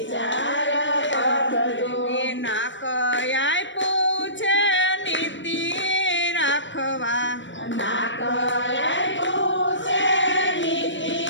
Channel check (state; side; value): late; right; 0.54 ms